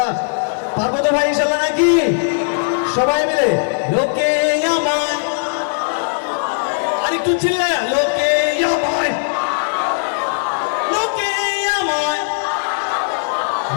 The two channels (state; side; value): silent; right; digital silence